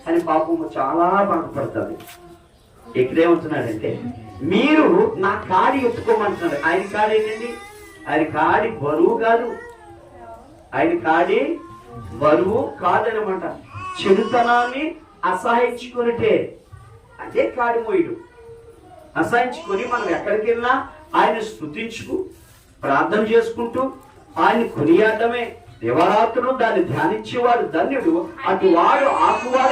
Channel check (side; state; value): both; identical; correlation 1.00